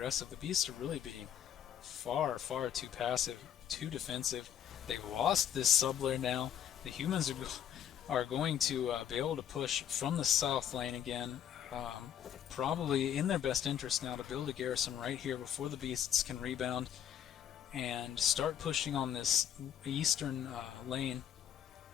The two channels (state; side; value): quieter; right; 9.7 dB